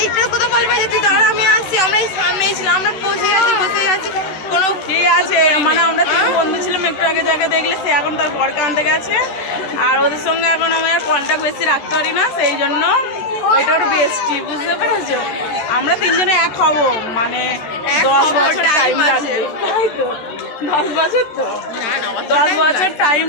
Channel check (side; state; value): right; late; 13 ms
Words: এইটা কোথাও বলবে যে তুই দাঁড়া আমি আসছি, আমরা এই সামনেই ছিলাম, আমরা বসে আছি কোনো ঠিক আছে, মানে আমরা তিন বন্ধু ছিলাম, একটু আগে যাকে দেখলে সে এখন তার বরকে আনতে গেছে, আর ওদের সঙ্গে এখন আমি আর কন্ট্যাক্ট বেশি রাখতে পারি না, সেই জন্য ওইটা ওর বেস্টি, বুঝতে পেরেছো? আমরা তিনজনে এক হব, মানে 10 বছর টাইম লাগবে, তাই তো 10 বছর, তো 10 বছর টাইম